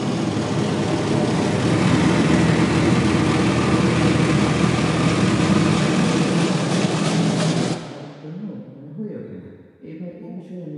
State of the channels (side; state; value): both; identical; correlation 1.00